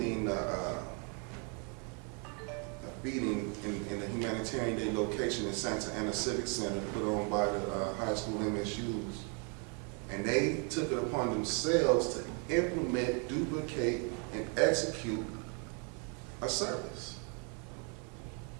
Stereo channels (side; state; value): left; quieter; 37.3 dB